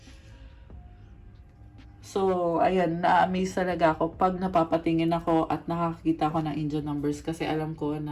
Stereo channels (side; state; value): both; identical; correlation 1.00